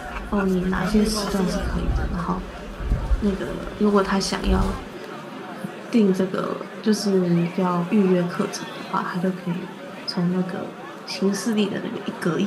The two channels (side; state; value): both; identical; correlation 1.00